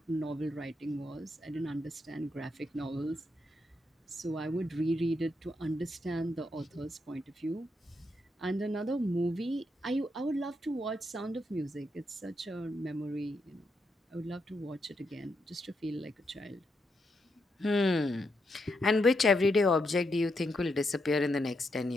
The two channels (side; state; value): both; normal; correlation 0.81